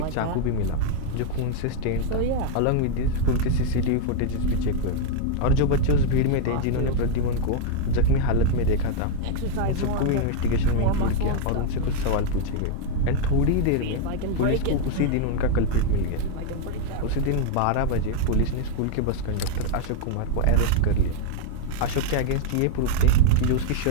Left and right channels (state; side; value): different; both; correlation 0.00